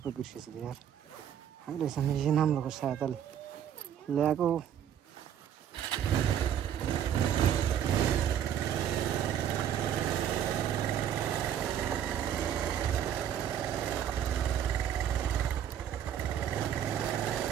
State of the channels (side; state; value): left; quieter; 9.6 dB